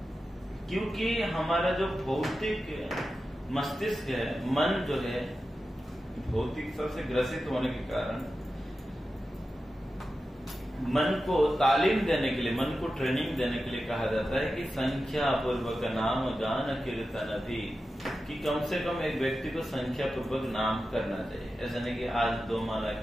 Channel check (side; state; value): both; normal; correlation 0.92